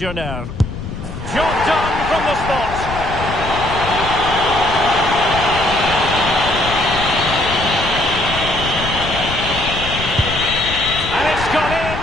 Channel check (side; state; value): left; noise; rumble, 8 dB below the sound